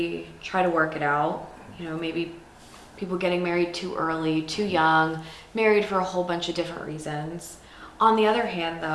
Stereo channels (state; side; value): identical; both; correlation 1.00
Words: try to work it out. Maybe people getting married too early, too young, married for a whole bunch of different reasons. On the other hand,